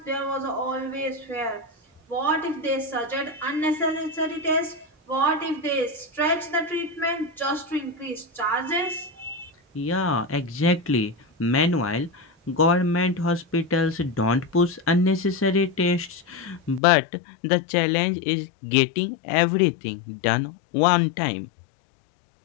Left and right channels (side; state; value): right; drops out; at 16.8 s